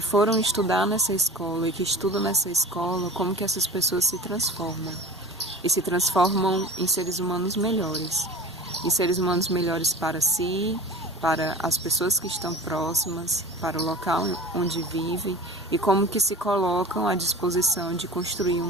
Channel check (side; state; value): both; normal; correlation 0.37